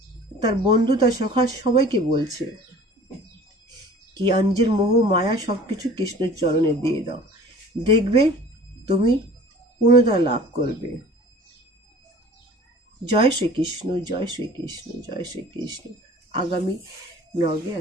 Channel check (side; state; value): both; normal; correlation 0.46